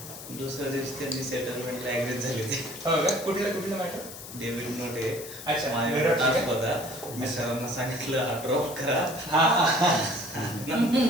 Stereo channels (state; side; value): noise; left; hiss, 13 dB below the sound